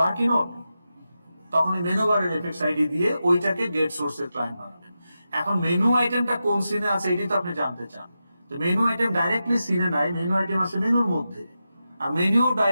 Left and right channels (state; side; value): inverted; both; correlation -0.90